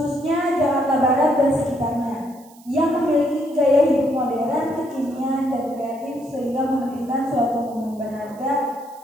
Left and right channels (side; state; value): right; noise; hiss, 26 dB below the sound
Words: Jakarta Barat dan sekitarnya, yang memiliki gaya hidup modern, kekinian, dan kreatif sehingga memberikan suatu momen berharga